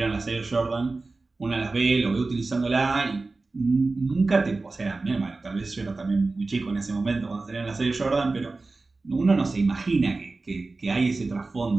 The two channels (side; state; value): left; quieter; 3.5 dB